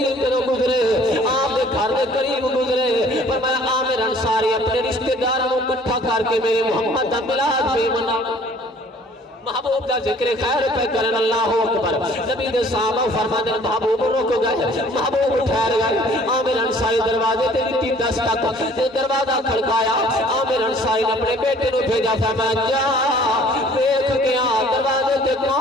گزرے آپ دے گھر دے قریب گزرے فرمایا عامر انصاری اپنے رشتہ داروں کو اکٹھا کر کے میرے محمد دا میلاد محبوب دا ذکر خیر پہ کرن اللہ اکبر نبی دے صحابہ فرمانے محبوب رک گئے محبوب ٹھہر گئے عامر انصاری دروازے تے دتی دستک دروازہ کھڑکایا عامر انصاری نے اپنے بیٹے نو بھیجا فرمایا جا دیکھ کے آ دروازے تے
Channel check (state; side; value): normal; both; correlation 0.54